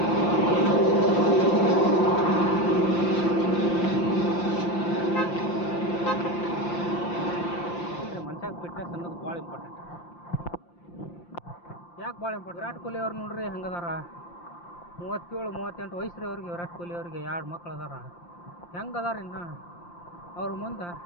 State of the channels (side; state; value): right; late; 5.8 ms